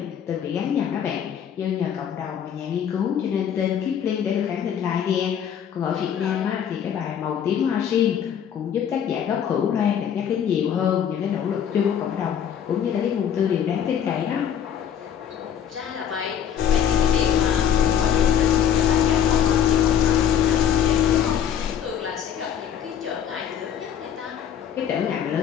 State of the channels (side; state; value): right; quieter; 8.8 dB